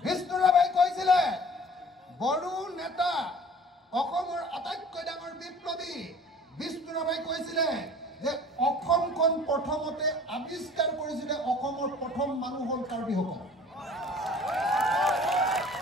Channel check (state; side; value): normal; both; correlation 0.48